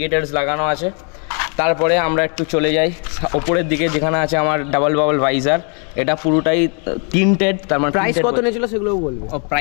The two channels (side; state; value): right; quieter; 39.3 dB